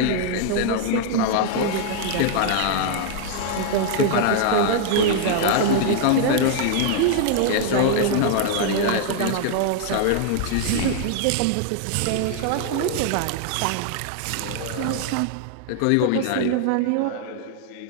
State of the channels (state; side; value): different; both; correlation 0.00